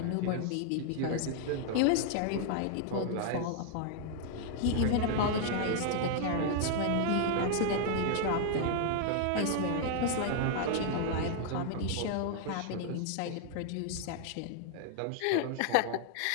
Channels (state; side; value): different; both; correlation 0.00